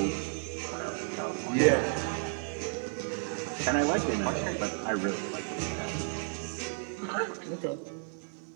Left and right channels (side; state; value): left; silent; 56 dB below the other